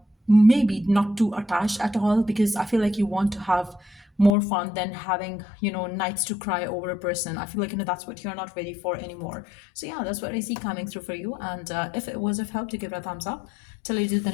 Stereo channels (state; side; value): drops out; right; at 4.4 s